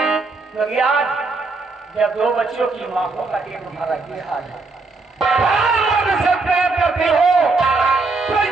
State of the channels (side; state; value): left; quieter; 3.8 dB